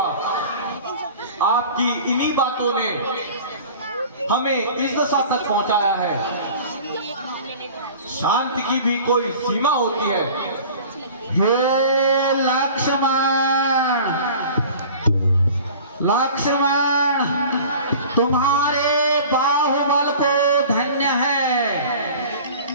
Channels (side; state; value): both; inverted; correlation -0.43